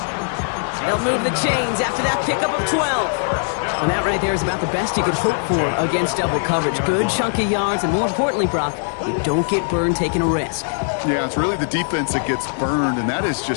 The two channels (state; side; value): silent; right; digital silence